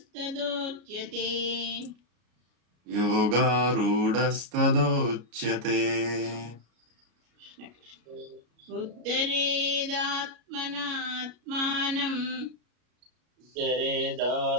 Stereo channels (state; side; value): late; left; 33 ms